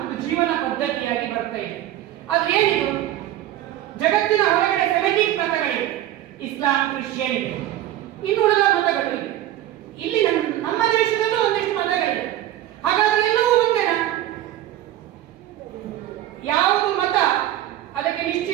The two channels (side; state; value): left; quieter; 13.3 dB